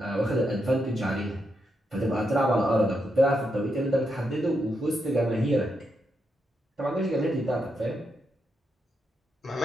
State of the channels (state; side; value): normal; both; correlation 0.82